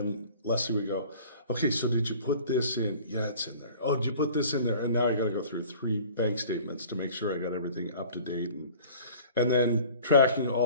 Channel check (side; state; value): both; inverted; correlation -0.46